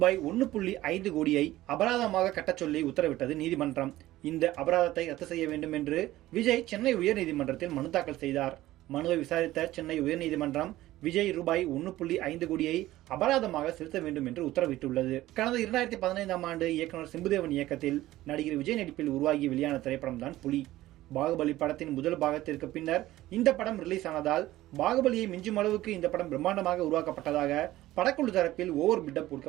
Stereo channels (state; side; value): quieter; left; 15.9 dB